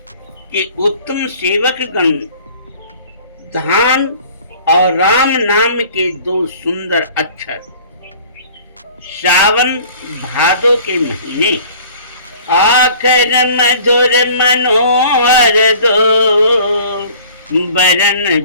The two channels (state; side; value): inverted; both; correlation -0.49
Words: कि उत्तम सेवक गण धाम और राम नाम के दो सुंदर अक्षर श्रावण भादो के महीने आखर मधुर मनोहर दो,